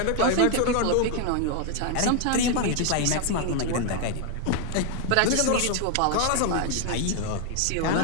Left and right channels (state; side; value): different; both; correlation 0.01